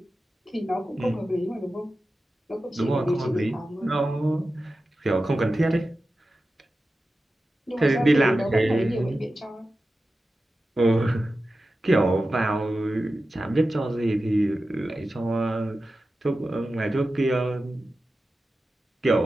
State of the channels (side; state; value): both; normal; correlation 0.93